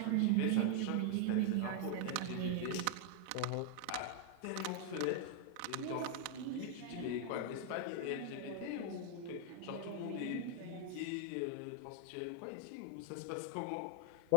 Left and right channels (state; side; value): different; both; correlation 0.00